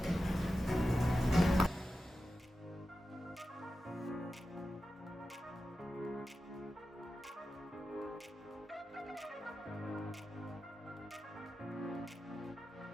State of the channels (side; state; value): both; normal; correlation 0.92